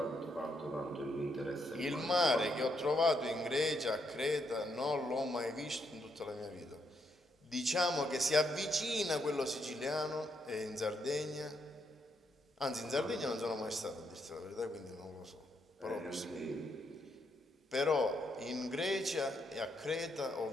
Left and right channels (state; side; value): normal; both; correlation 0.77